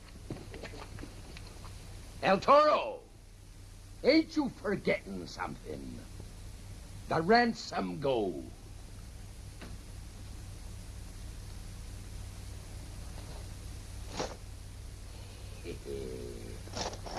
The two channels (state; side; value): identical; both; correlation 1.00